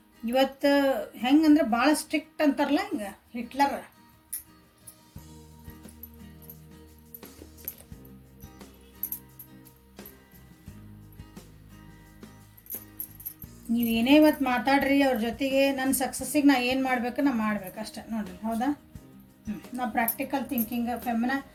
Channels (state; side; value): identical; both; correlation 1.00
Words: ಇವತ್ತು ಹೆಂಗಂದ್ರೆ ಭಾಳ ಸ್ಟ್ರಿಕ್ಟ್ ಅಂತಾರಲ್ಲ, ಹಿಂಗೆ ಹಿಟ್ಲರ್. ನೀವೇನೇ ಇವತ್ತು ಮಾತಾಡ್ರಿ ಅವ್ರ ಜೊತೆಗೆ, ನನ್ನ ಸಕ್ಸಸ್ಸಿಗೆ ನಾ ಏನು ಮಾಡಬೇಕು ನಾ ಮಾಡ್ಬೇಕು ಅಷ್ಟೆ ನೋಡಿರಿ. ಹೌದಾ? ನಾ ಪ್ರಾಕ್ಟಿಕಲ್ ಥಿಂಕಿಂಗ್ ಫೆಮಿನ